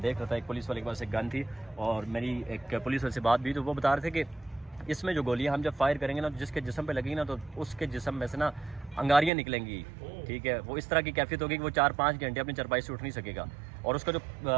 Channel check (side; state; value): left; drops out; at 9.3 s